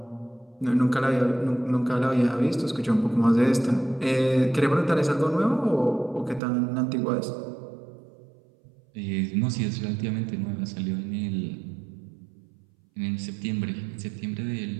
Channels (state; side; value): drops out; left; at 6.4 s